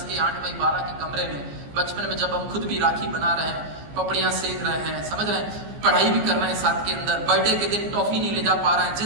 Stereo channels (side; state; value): left; late; 14 ms